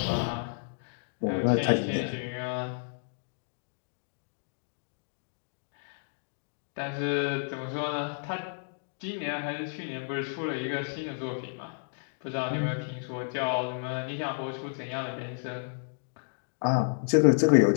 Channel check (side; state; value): right; silent; digital silence